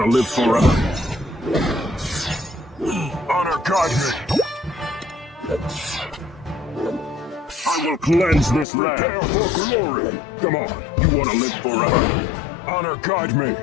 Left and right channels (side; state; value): right; drops out; at 8.7 s